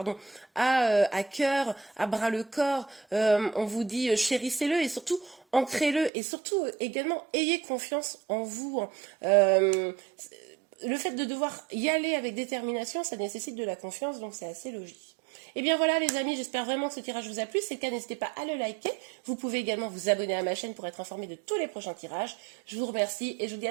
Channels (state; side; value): drops out; left; at 6.1 s